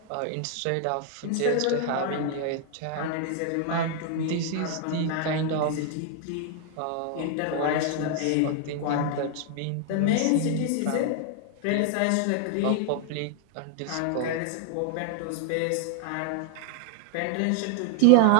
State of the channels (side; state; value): both; different; correlation 0.00